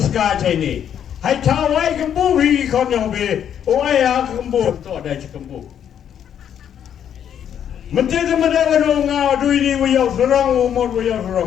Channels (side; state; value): right; quieter; 9.2 dB